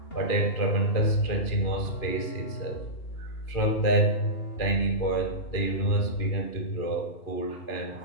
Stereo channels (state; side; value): late; right; 2.5 ms